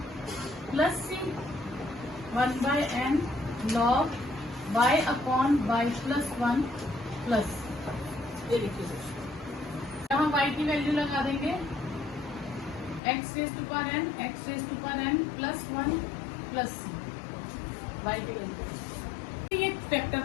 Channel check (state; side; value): drops out; right; at 13.0 s